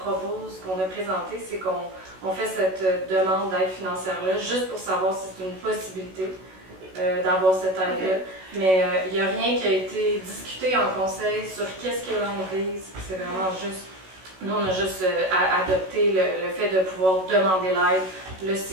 qu'on a présenté, c'est qu'on fait cette demande d'aide financière-là, juste pour savoir si c'est une possibilité d'avoir cette aide-là. Mais il n'y a rien qui a été discuté en conseil sur qu'est-ce qu'il y a dans l'église. C'est vraiment juste... Nous, on a juste adopté le fait de pouvoir demander l'aide. Là,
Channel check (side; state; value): left; late; 16 ms